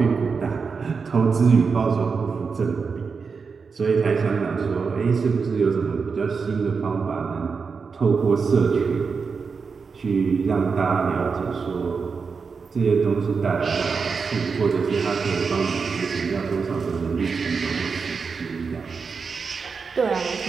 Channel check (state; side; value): quieter; left; 5.2 dB